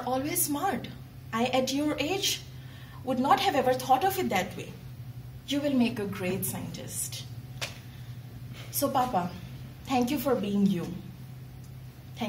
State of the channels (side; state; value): both; identical; correlation 1.00